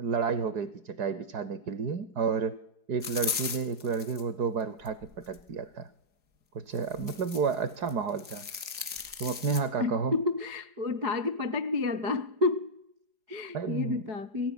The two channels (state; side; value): late; left; 4.8 ms